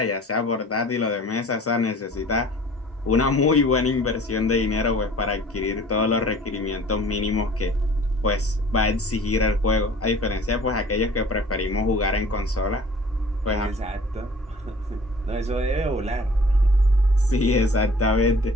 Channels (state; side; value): normal; both; correlation 0.49